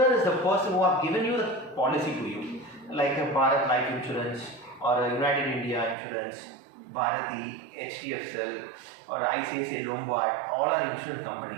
is the person who have given you the policy to you, like a Bharat Life Insurance or a United India Insurance, Bharati, HDFC, or ICICI Lombard, all are insurance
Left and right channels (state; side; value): drops out; left; at 6.0 s